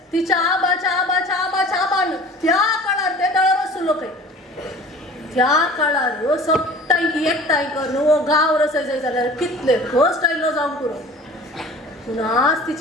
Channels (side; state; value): both; normal; correlation 0.43